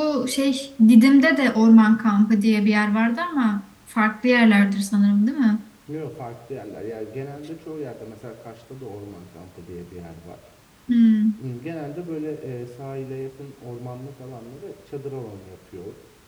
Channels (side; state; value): both; identical; correlation 1.00